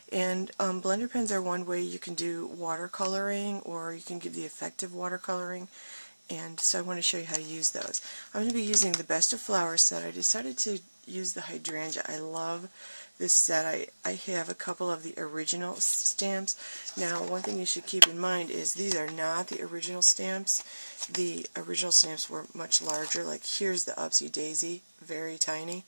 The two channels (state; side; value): inverted; both; correlation -1.00